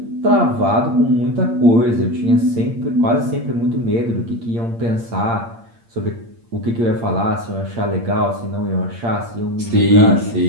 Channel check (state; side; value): late; left; 8.7 ms